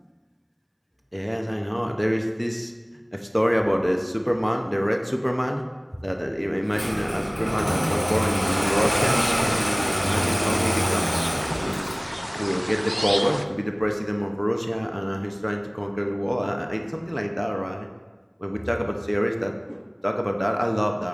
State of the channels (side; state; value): both; identical; correlation 1.00